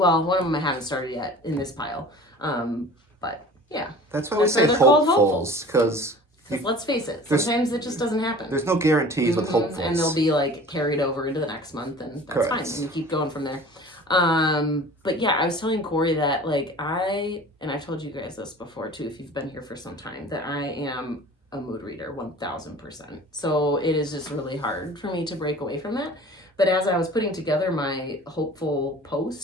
one of them I haven't started yet in this pile. But yeah. That's why we say hopefuls, because let's face it, sometimes it just doesn't happen. There's no guarantees with hopefuls. And they'll be like carried over into the next month, and that's fine. And you keep going from there. But yeah, I was telling Corey that like and I've told you guys this before too, if you've been here for some time, that I am a mood reader 1000%. So it is just really hard for me to break away from that. But as I was putting together my hopeful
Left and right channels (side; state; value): both; normal; correlation 0.43